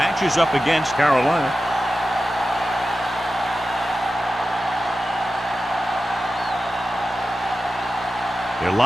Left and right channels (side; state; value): both; normal; correlation 0.93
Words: up against Carolina. They're